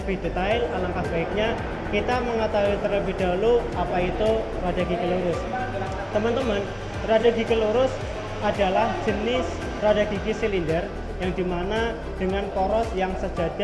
detail, alangkah baiknya kita mengetahui terlebih dahulu apa itu rada gigi lurus. Teman-teman, rada gigi lurus adalah jenis rada gigi silinder yang dimana dengan poros yang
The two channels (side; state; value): both; identical; correlation 1.00